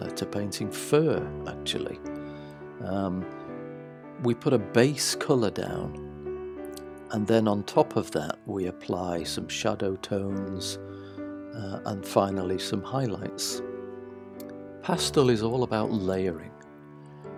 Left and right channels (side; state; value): both; identical; correlation 1.00